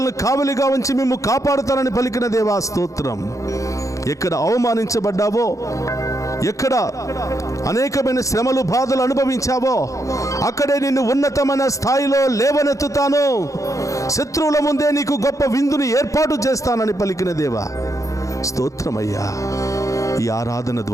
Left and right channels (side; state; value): right; late; 0.16 ms